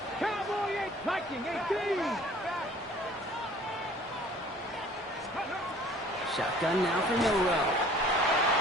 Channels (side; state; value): both; normal; correlation 0.51